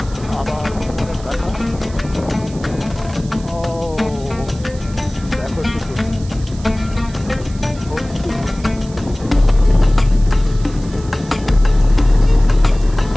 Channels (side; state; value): right; noise; hiss, 21 dB below the sound